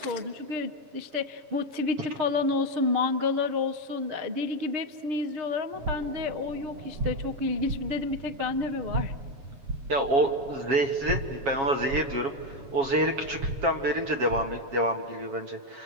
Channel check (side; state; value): left; late; 7.2 ms